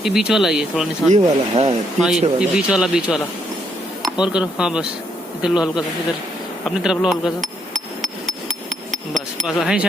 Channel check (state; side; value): normal; both; correlation 0.74